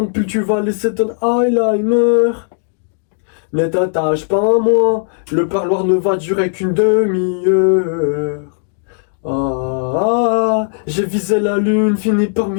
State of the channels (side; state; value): right; silent; digital silence